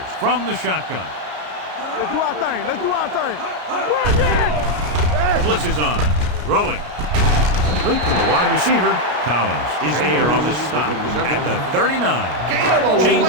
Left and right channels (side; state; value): left; late; 33 ms